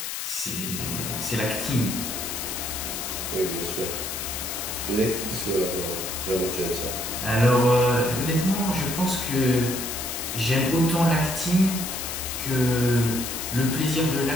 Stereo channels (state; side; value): noise; left; hiss, 5 dB below the sound